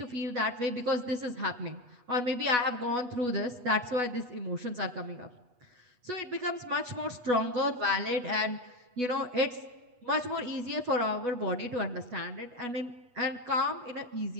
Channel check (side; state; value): left; late; 8.2 ms